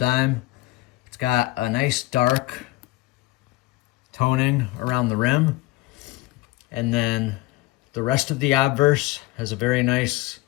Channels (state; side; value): quieter; right; 18.7 dB